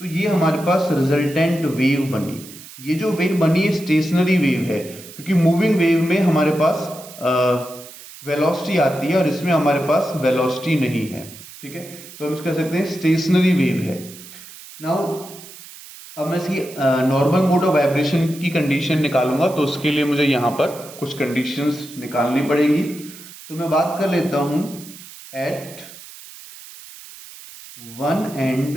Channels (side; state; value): right; noise; hiss, 17 dB below the sound